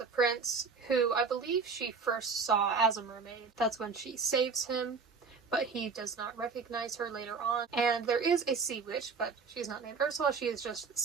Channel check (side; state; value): left; quieter; 5.0 dB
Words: prince, who I believe she first saw as a mermaid. That's when she saves him, but he does not recognize her later on. And there is a sea witch, but she's not named Ursula, she is just